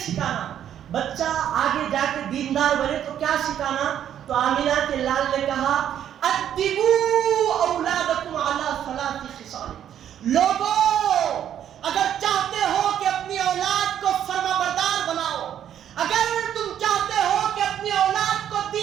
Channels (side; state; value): left; quieter; 10.1 dB